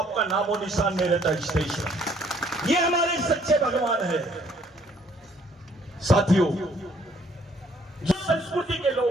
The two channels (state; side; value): normal; both; correlation 0.63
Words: नामो निशान नहीं रहता इस देश में। ये हमारे सच्चे भगवान है। साथियों, जो संस्कृति के